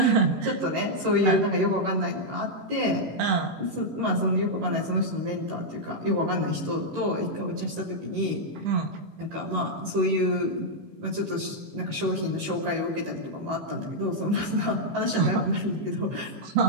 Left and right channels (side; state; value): left; late; 18 ms